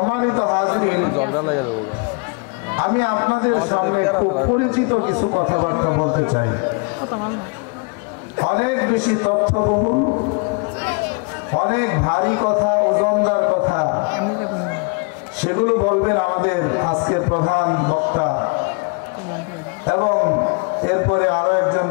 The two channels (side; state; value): right; quieter; 33.5 dB